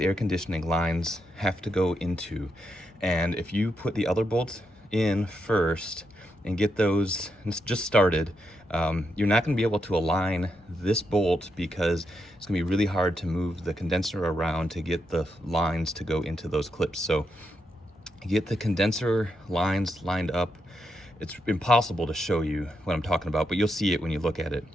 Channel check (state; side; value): normal; both; correlation 0.82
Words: conditioning lines have to go into. And if you put the other bolts in first and get those just started, You're not going to be able to align this bolt because it's going to be really hard to move the condenser around to get the lines to go into those clips. So get the condenser lines lined up. It's impossible to show you what I'm talking about, but you'll see it when you look at it.